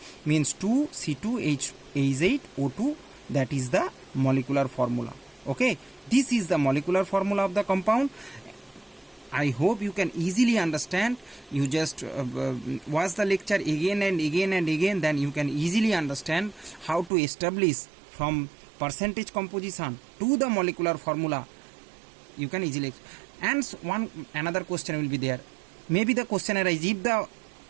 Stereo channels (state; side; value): drops out; left; at 17.1 s